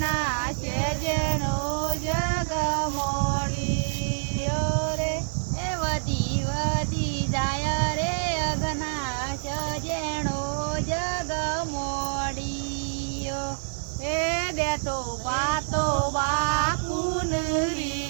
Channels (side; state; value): left; silent; 57 dB below the other